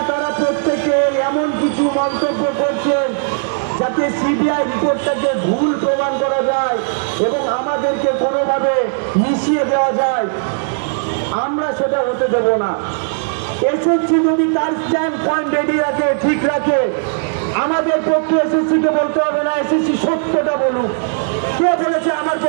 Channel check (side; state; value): left; silent; digital silence